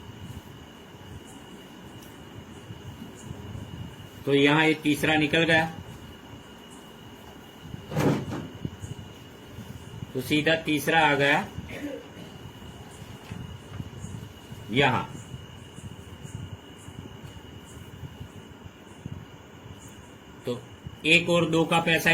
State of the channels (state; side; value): identical; both; correlation 1.00